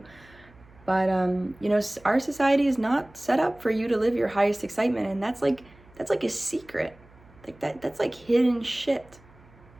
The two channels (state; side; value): noise; right; hum, 26 dB below the sound